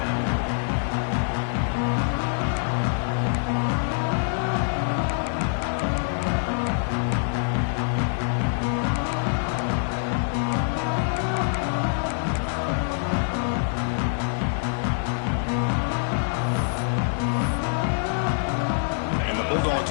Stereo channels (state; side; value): silent; right; digital silence